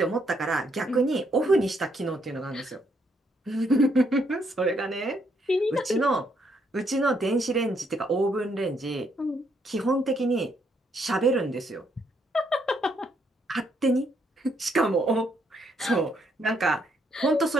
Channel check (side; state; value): both; normal; correlation 0.74